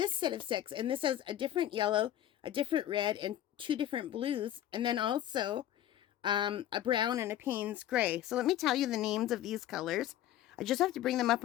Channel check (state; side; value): quieter; right; 12.2 dB